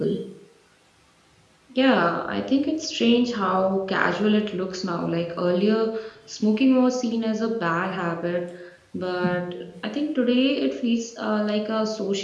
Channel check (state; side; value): identical; both; correlation 1.00